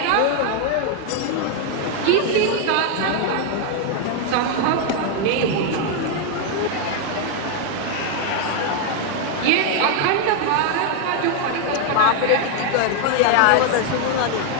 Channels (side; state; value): both; different; correlation 0.00